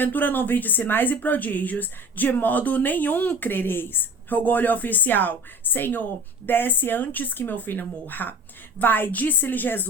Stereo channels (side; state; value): both; normal; correlation 0.41